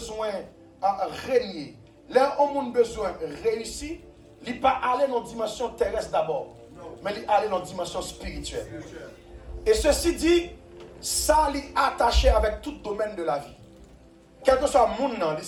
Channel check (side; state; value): both; identical; correlation 1.00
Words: de régner, là où on a besoin de réussir, il n'est pas aller dans la dimension terrestre d'abord, mais il est aller dans la dimension spirituelle. Et ceci dit, ça est attaché avec tout domaine de la vie. Quel que soit le monde,